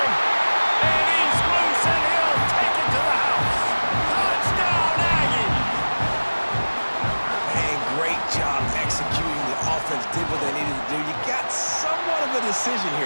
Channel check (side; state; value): both; inverted; correlation -1.00